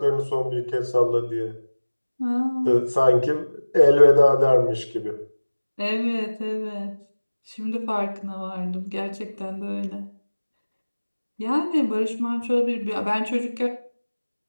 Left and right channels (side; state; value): both; inverted; correlation -1.00